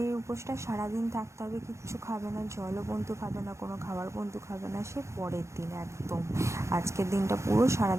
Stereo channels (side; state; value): left; late; 0.14 ms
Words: উপোসটা সারাদিন থাকতে হবে, কিচ্ছু খাবে না, জলও বন্ধু খাবে না, কোনো খাবার বন্ধু খাবে না, সে পরের দিন একদম। আজকের দিনটা পুরো